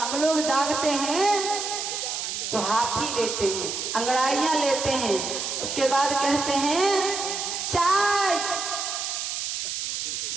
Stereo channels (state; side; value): noise; right; hiss, 3 dB below the sound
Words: लोग जागते हैं तो हाफी लेते हैं, अंगड़ाइयां लेते हैं, उसके बाद कहते हैं चाय,